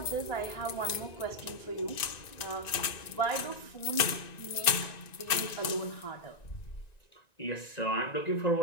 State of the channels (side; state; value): right; late; 1.9 ms